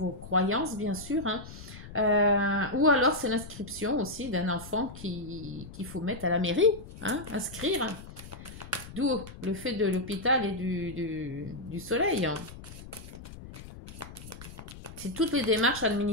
croyances, bien sûr, hein. Ou alors c'est l'inscription aussi d'un enfant qu'il faut mettre à la mairie, hein, inscrire. D'où le fait de l'hôpital et du soleil. C'est toutes les démarches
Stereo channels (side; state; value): left; noise; rumble, 14 dB below the sound